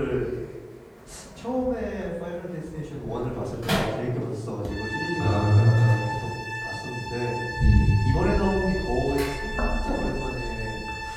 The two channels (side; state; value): both; identical; correlation 1.00